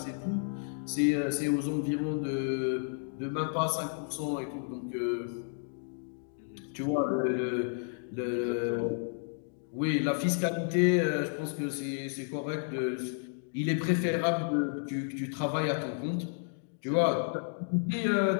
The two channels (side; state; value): right; silent; digital silence